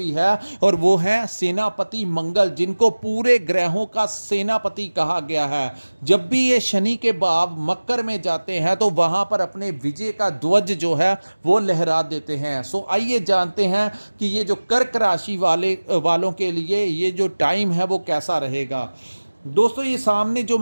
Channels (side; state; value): both; inverted; correlation -1.00